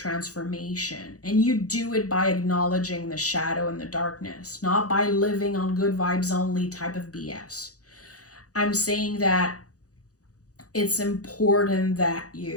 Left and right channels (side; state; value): right; late; 0.67 ms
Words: and you do it by acknowledging the shadow and the darkness, not by living on good vibes only type of BS. I'm saying that it's important that